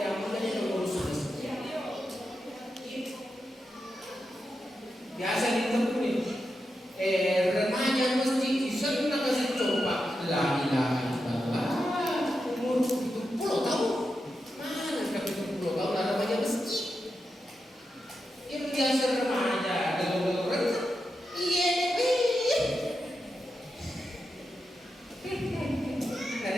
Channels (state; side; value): normal; both; correlation 0.88